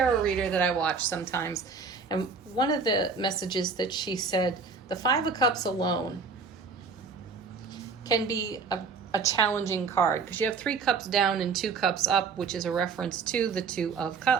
reader that I watch sometimes, And one of the messages that she said, the Five of Cups alone can be a challenging card because you have 3 cups down and 2 cups up, which is a reference to the Two of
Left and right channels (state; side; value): quieter; left; 5.0 dB